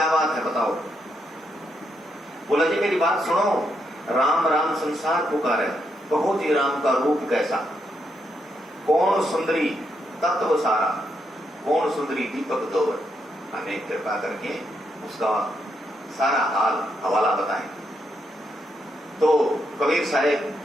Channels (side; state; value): both; normal; correlation 0.79